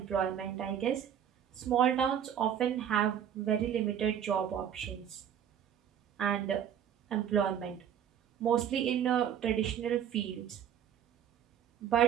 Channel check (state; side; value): quieter; left; 9.2 dB